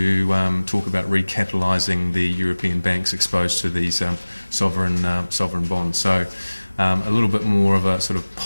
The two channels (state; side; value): inverted; both; correlation -1.00